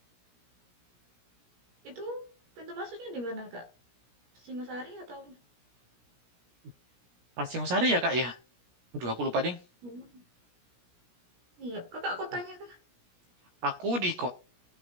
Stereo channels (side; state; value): left; late; 17 ms